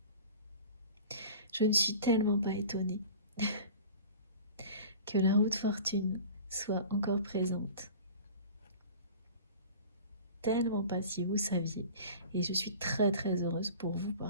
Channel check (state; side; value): inverted; both; correlation -0.40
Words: Je ne suis tellement pas étonnée que la roue de fortune soit encore présente. Tellement pas, si vous saviez. Et je suis très très heureuse pour vous